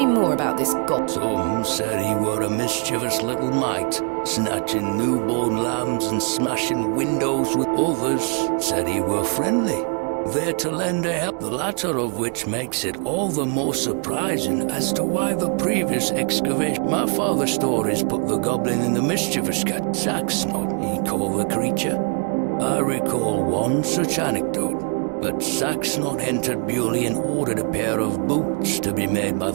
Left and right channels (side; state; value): left; quieter; 38.8 dB